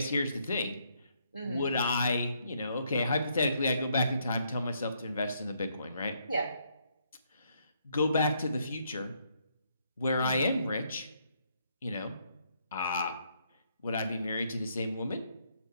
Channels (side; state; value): both; inverted; correlation -0.73